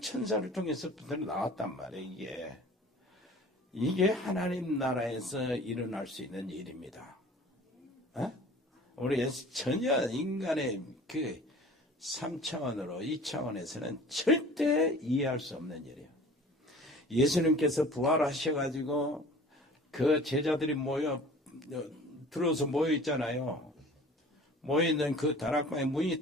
통해서 나왔단 말이에요. 이게 하나님 나라에서 일어날 수 있는 일입니다. 우리 전혀 인간의 그 3차원으로 2차원에서는 절대 이해할 수 없는 일이에요. 예수님께서 부활하셔가지고 그 제자들이 들어서 모여 있잖아요. 모여있는 그 다락방의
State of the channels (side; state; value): both; normal; correlation 0.45